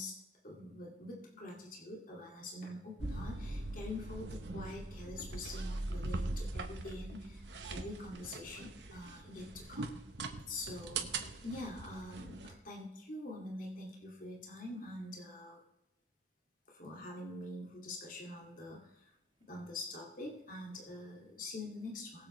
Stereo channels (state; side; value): normal; both; correlation 0.61